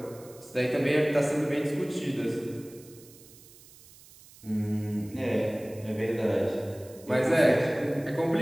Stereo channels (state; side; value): noise; right; hiss, 22 dB below the sound